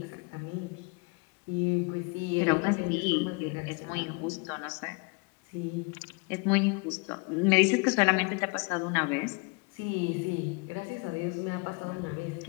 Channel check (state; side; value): quieter; right; 30.3 dB